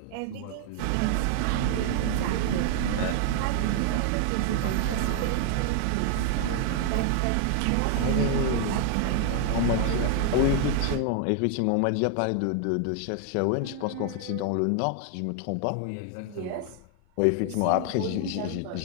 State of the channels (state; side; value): different; both; correlation 0.00